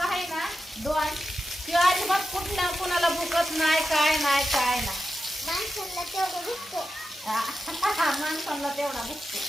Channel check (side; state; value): both; normal; correlation 0.90